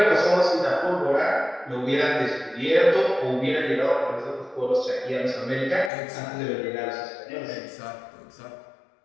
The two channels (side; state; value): right; drops out; at 5.9 s